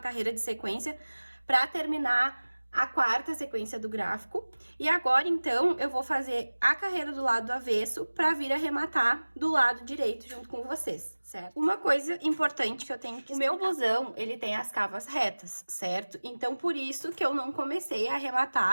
de sequência para terminar a 4ª sequência do gráfico. E agora, então, eu vou fazer a carreira do lado avesso para vir arrematar do lado direito junto com vocês, certo? Uma coisa importante que eu tenho que explicar. O meu blusão, ele tem as cavas retas, certo? Então, por isso que eu não comecei a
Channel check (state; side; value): inverted; both; correlation -1.00